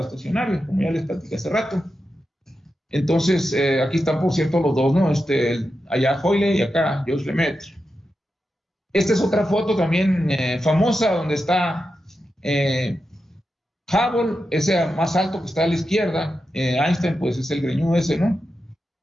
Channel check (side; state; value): both; normal; correlation 0.89